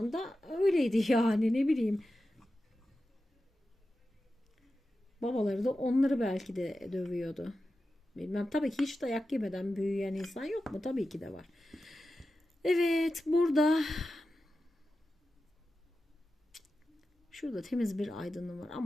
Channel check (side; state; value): both; normal; correlation 0.93